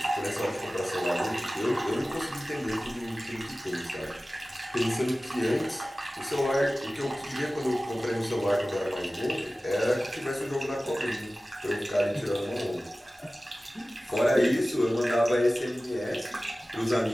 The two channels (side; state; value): both; normal; correlation 0.97